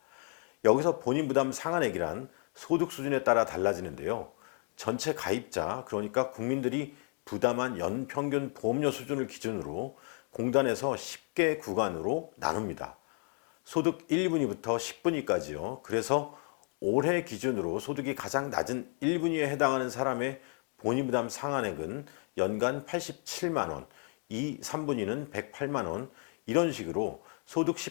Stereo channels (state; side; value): quieter; right; 38.3 dB